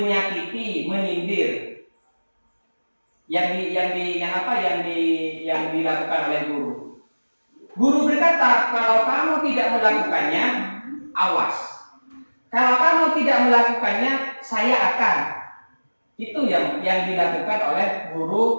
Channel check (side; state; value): both; inverted; correlation -1.00